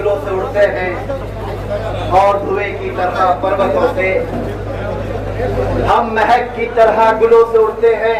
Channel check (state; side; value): identical; both; correlation 1.00